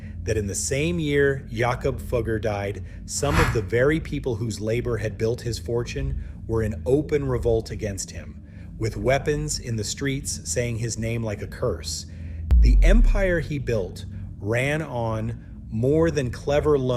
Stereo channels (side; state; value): both; identical; correlation 1.00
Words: that in the same year Jakob Fugger died, some of the very people whose labor had built his fortune were in open revolt against him, with weapons in the streets saying his name like a curse. The empire he built ran on more than clever